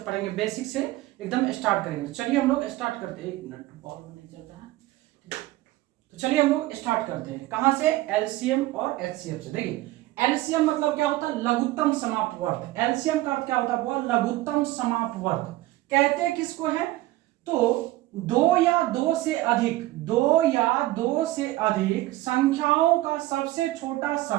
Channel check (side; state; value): left; quieter; 17.3 dB